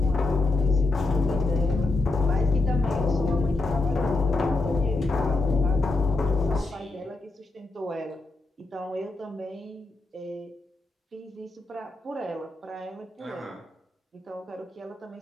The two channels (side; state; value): right; quieter; 3.1 dB